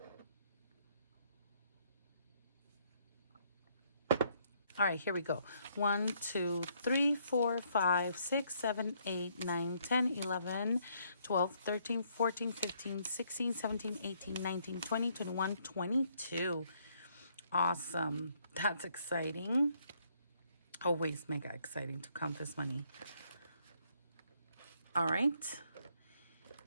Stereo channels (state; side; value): inverted; both; correlation -0.70